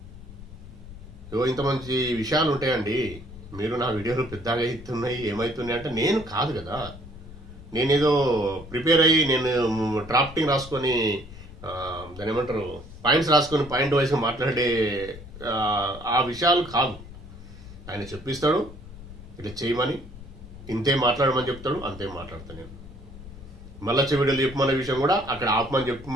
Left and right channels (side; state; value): left; noise; rumble, 15 dB below the sound